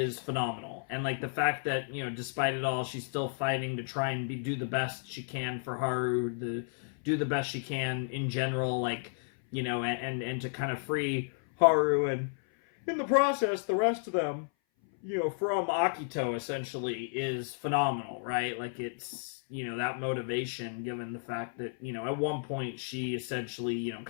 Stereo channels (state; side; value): silent; right; 56 dB below the other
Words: phenomenal. And like the fact that, you know, despite it all, she's still fighting to try and do the best she can for Haru, do the best she can in general, like, you know, and to kind of free Haru, and in the process the rest of them, you know, from Akito essentially is phenomenal, right? Like it's, you know, that motivation, given the fact that, you know, at one point she essentially, you know,